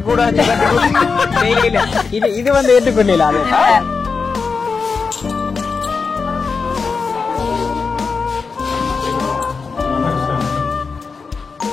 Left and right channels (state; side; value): quieter; right; 4.9 dB